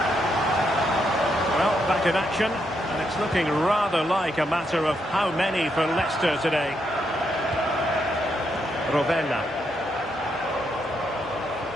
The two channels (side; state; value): both; normal; correlation 0.79